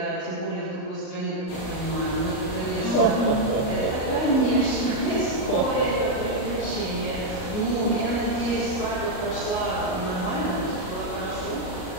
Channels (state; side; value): late; right; 38 ms